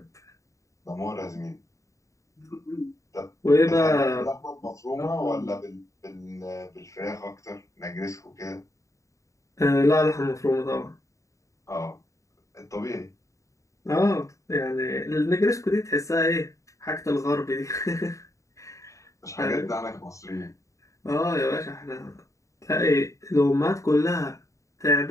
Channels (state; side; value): late; right; 0.15 ms